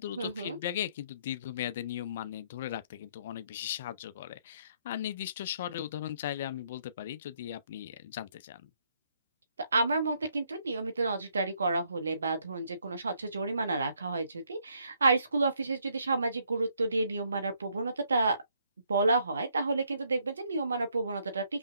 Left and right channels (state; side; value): inverted; both; correlation -0.71